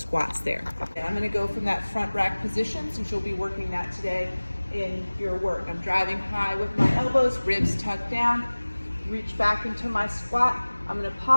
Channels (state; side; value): inverted; both; correlation -1.00